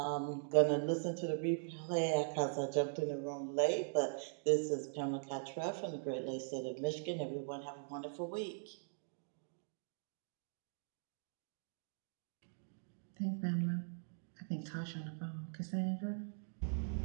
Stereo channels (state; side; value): silent; left; digital silence